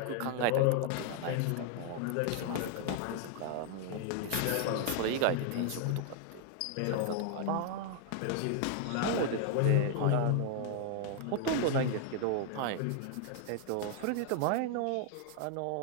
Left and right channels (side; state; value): both; different; correlation 0.00